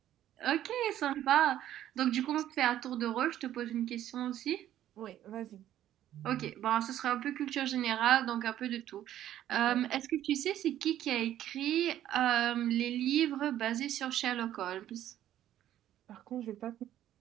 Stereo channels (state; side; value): quieter; left; 12.1 dB